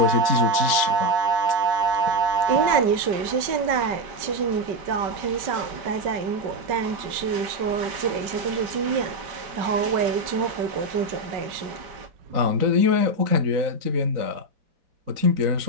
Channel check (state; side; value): late; left; 5.2 ms